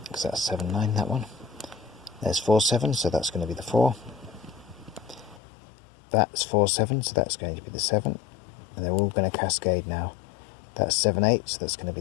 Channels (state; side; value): drops out; right; at 5.4 s